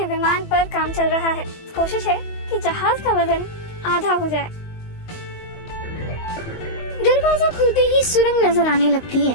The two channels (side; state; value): right; late; 20 ms